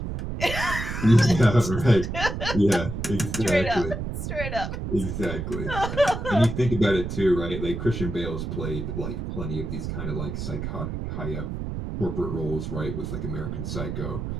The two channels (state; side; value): noise; right; rumble, 5 dB below the sound